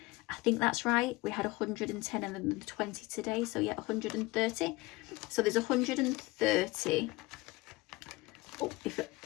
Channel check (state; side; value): quieter; right; 21.5 dB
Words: I think that's right. We had 110 and then 20 today. So yeah, 130. So there's 130. Oh, if it